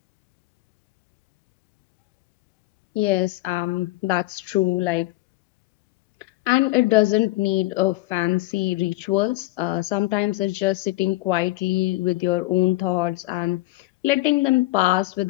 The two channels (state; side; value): quieter; right; 19.4 dB